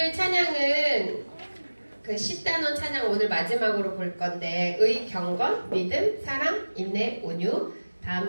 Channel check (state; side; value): inverted; both; correlation -1.00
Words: 찬양은 그 10단원 찬양 오늘 마지막으로 볼 건데 경건, 믿음, 사랑, 인내, 온유 다